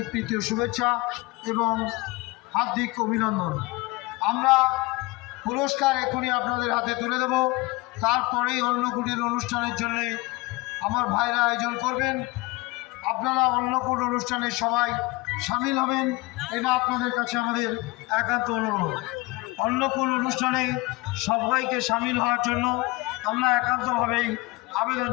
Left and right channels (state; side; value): quieter; right; 23.0 dB